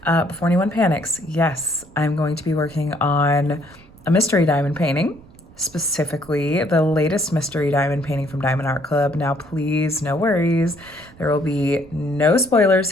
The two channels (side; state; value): right; noise; rumble, 24 dB below the sound